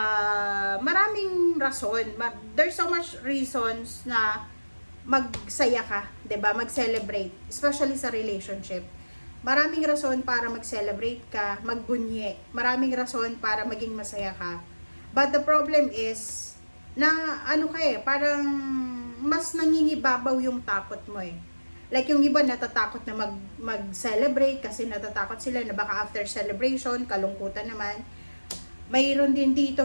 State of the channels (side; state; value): both; inverted; correlation -1.00